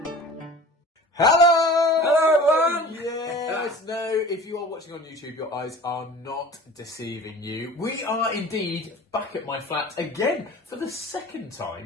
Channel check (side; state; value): both; normal; correlation 0.41